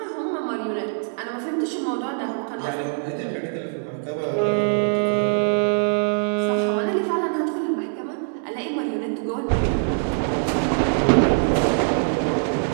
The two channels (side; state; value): left; silent; digital silence